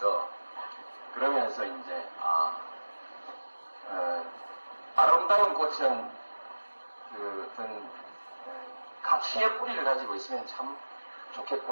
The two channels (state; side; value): inverted; both; correlation -1.00